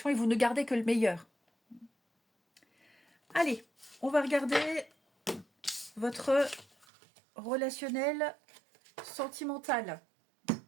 et vous ne gardez que le meilleur. Allez, on va regarder votre relationnel sentimental.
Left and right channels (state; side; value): drops out; left; at 6.9 s